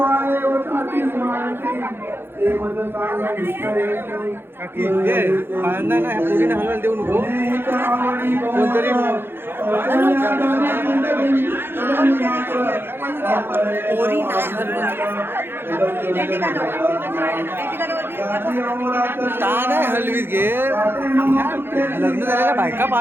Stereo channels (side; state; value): left; late; 0.10 ms